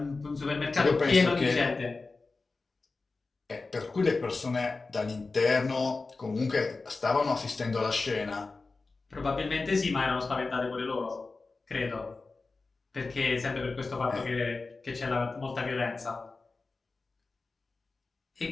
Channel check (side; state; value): right; quieter; 3.8 dB